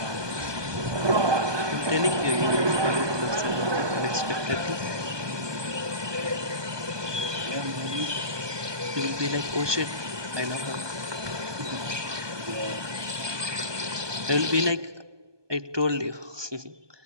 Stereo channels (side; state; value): left; late; 1.2 ms